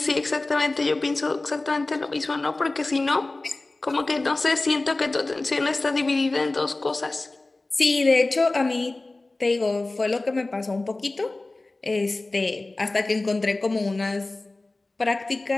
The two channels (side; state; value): right; quieter; 3.1 dB